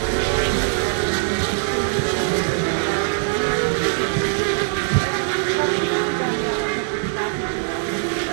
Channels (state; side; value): silent; left; digital silence